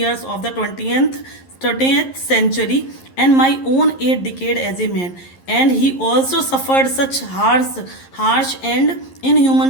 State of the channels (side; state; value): right; late; 11 ms